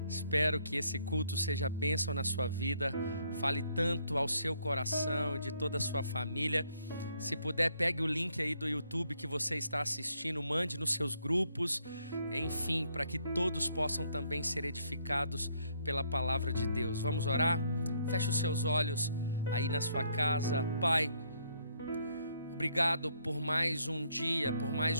Espero que esse culto seja bênção na sua vida, fale tanto ao seu coração e de toda a sua família. Se puder, pegue o link aí do YouTube que você está assistindo, mande nos seus grupos, enfim, para que todos possam também ser edificados pela palavra de Deus. Vamos orar? Feche os seus olhos aí na sua casa. Pai, obrigado por mais um dia, por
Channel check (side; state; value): both; inverted; correlation -0.70